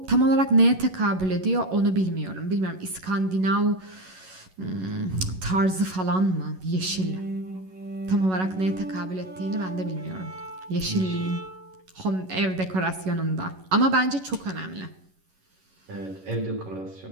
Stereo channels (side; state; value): left; late; 11 ms